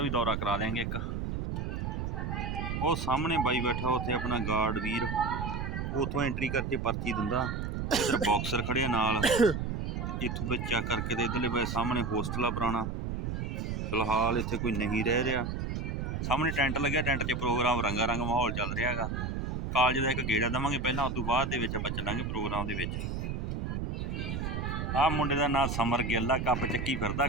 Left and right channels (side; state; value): right; noise; rumble, 3 dB below the sound